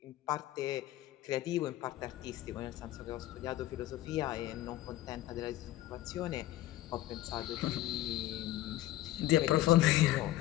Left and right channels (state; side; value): quieter; right; 15.4 dB